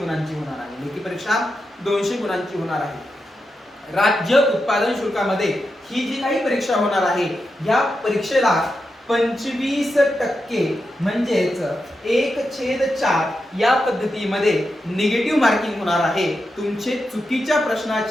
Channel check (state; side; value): normal; both; correlation 0.88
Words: होणार आहे। लेखी परीक्षा 200 गुणांची होणार आहे। राज्य उत्पादन शुल्कामध्ये ही जी काही परीक्षा होणार आहे या परीक्षेला 25% म्हणजेच 1/4 या पद्धतीमध्ये निगेटिव्ह मार्किंग होणार आहे। तुमचे चुकीच्या